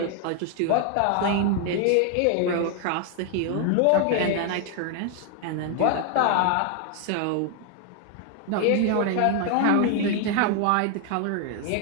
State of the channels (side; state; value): both; different; correlation 0.00